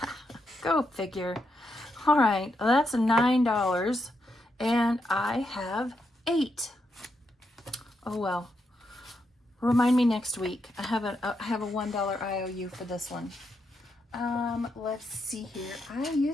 Go figure. All right, well, that's $9, and I have 8. Oh well. Remind me next week. I have a $1 IOU for this one. Let's see here. I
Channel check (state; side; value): normal; both; correlation 0.82